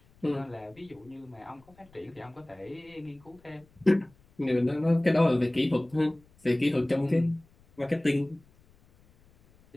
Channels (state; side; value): noise; left; rumble, 30 dB below the sound